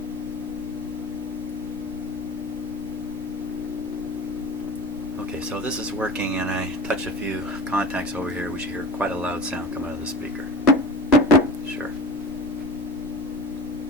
Okay, so this is working, and I touch a few contacts over here. We should hear quite a loud sound come out of the speaker. Sure.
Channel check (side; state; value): both; normal; correlation 0.35